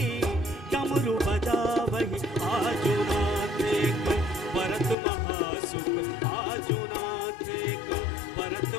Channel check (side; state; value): right; drops out; at 5.0 s